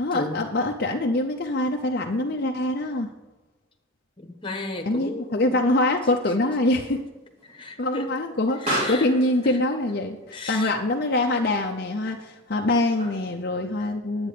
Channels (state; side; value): normal; both; correlation 0.26